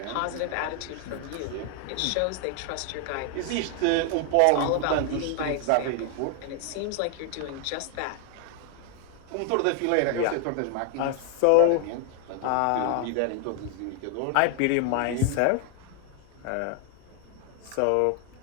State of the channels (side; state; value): both; different; correlation 0.00